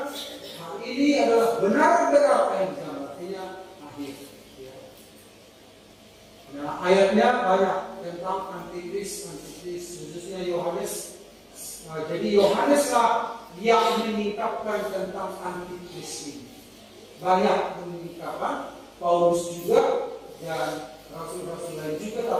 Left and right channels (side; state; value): both; identical; correlation 1.00